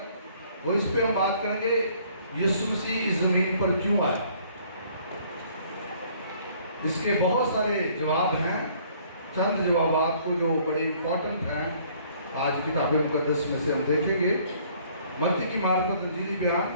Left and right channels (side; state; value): both; inverted; correlation -0.59